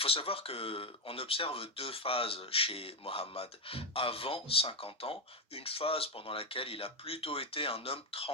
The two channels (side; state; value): both; normal; correlation 0.08